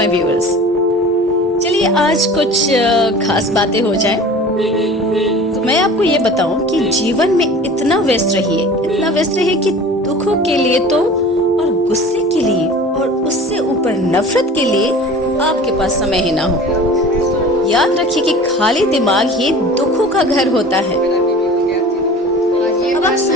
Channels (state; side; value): normal; both; correlation 0.41